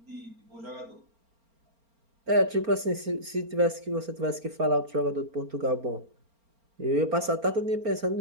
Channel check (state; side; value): late; left; 4.4 ms